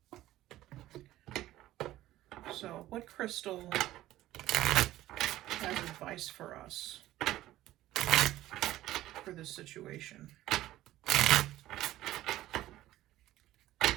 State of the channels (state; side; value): quieter; left; 15.0 dB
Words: So, what crystal has advice for us for this situation?